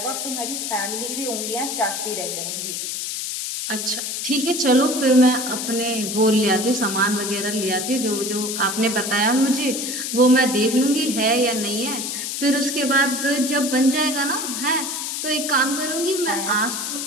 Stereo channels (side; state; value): left; noise; hiss, 4 dB below the sound